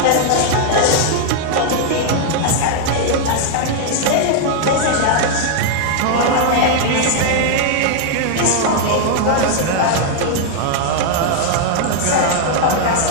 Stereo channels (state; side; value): different; both; correlation 0.00